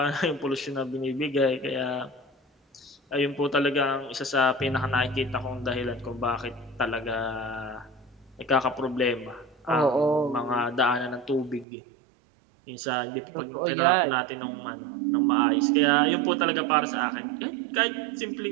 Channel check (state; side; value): drops out; left; at 11.7 s